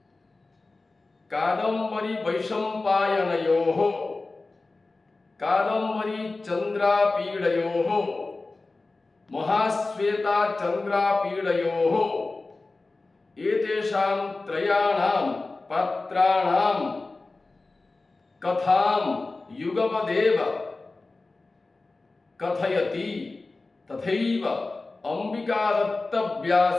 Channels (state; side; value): quieter; right; 3.4 dB